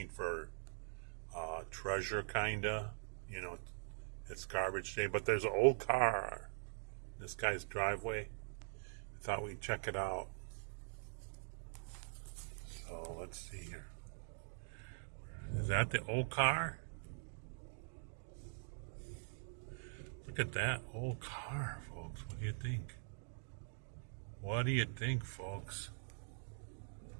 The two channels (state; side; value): silent; left; digital silence